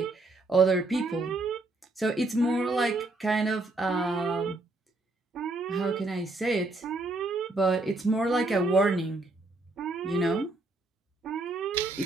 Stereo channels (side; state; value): left; quieter; 3.0 dB